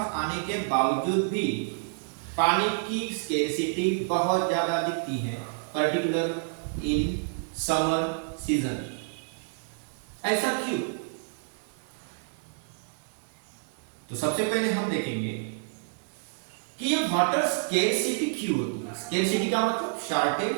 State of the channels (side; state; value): left; silent; digital silence